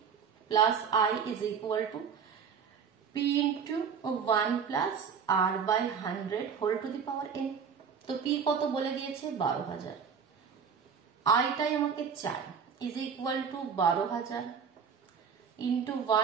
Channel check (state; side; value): quieter; left; 6.7 dB